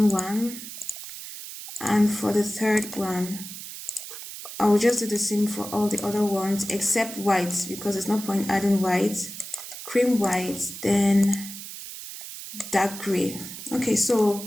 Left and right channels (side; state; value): right; noise; hiss, 11 dB below the sound